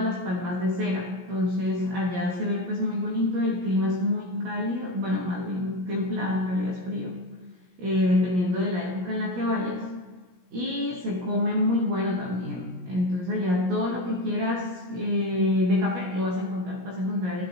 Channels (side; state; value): left; late; 17 ms